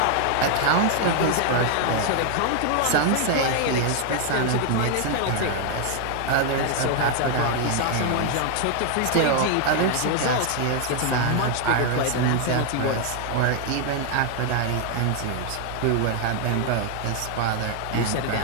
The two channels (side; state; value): both; different; correlation 0.00